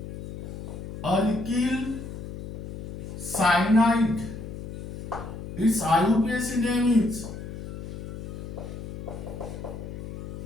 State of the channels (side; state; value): left; noise; hum, 9 dB below the sound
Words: alkyl cyanide. Its IUPAC name is